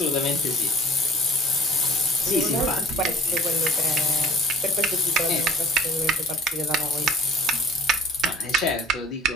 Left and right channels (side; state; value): both; normal; correlation 0.45